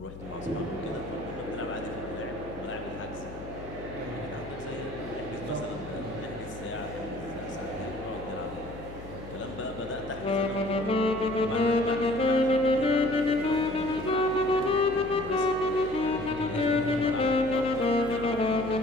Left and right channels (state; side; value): noise; left; hum, 14 dB below the sound